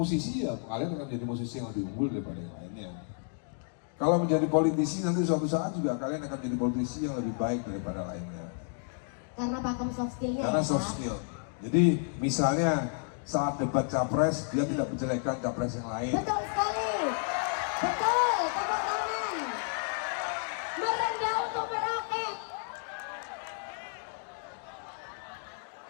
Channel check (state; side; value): silent; right; 57 dB below the other